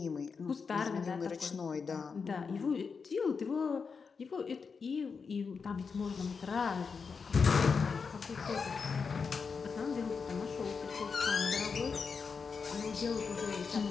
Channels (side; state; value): right; quieter; 5.4 dB